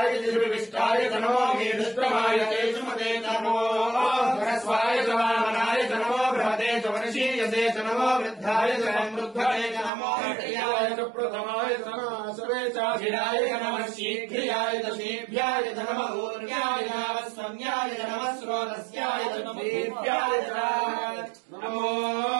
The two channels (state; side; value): drops out; left; at 9.9 s